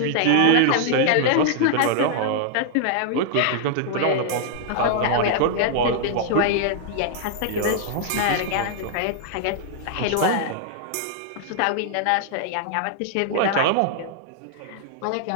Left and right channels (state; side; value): different; both; correlation 0.00